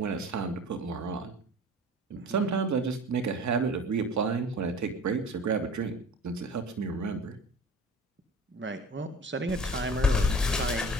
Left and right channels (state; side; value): normal; both; correlation 0.41